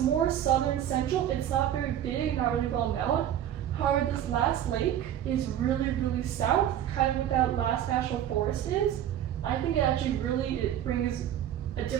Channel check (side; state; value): left; quieter; 10.8 dB